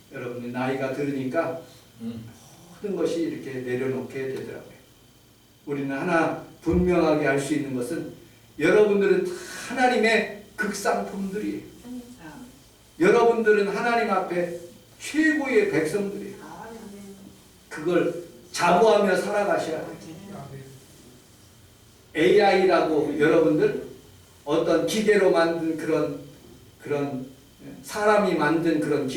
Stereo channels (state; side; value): identical; both; correlation 1.00